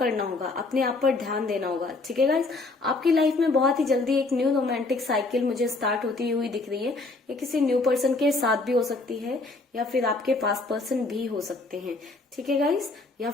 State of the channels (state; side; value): quieter; right; 3.4 dB